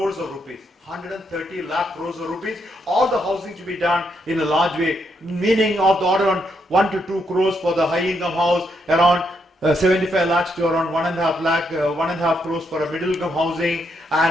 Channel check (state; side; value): normal; both; correlation 0.78